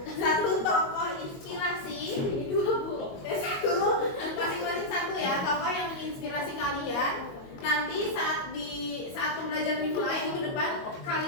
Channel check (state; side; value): late; right; 22 ms